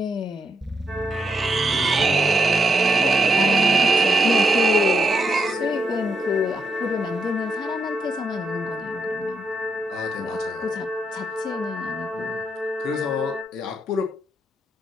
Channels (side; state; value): both; normal; correlation 0.80